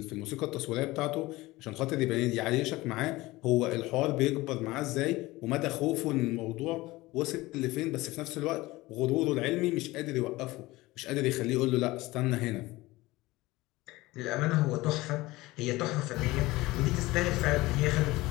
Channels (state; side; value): quieter; right; 19.7 dB